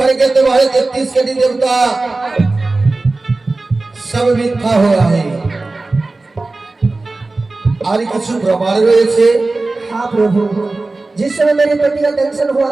तुम्हारे 33 कटी देवता सब मिथ्या हो रहा है। আর কিছু প্রমাণ রয়েছে। हाँ प्रभु, जिस समय मेरे पति का दर्शन हुआ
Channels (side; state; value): left; quieter; 3.3 dB